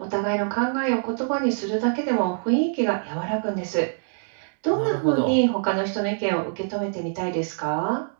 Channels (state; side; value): silent; left; digital silence